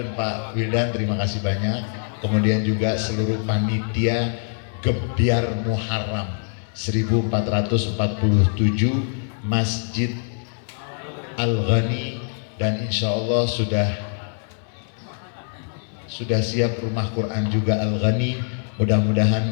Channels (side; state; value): right; silent; 63 dB below the other